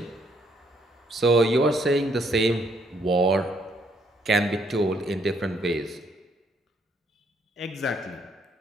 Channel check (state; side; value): normal; both; correlation 0.70